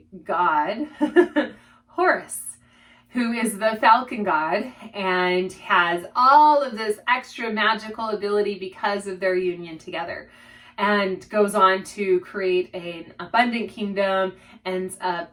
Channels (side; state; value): both; identical; correlation 1.00